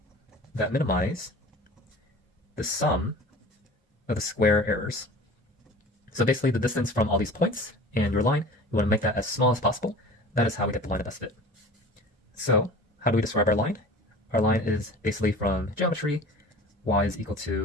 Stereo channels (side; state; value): both; normal; correlation 0.40